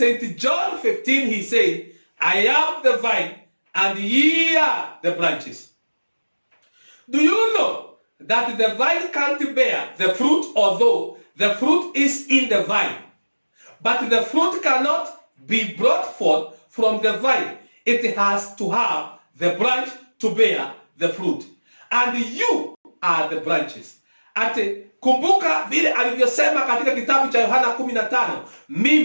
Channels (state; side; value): inverted; both; correlation -1.00